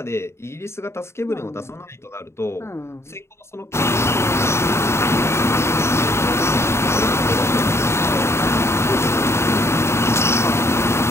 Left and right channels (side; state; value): right; late; 0.13 ms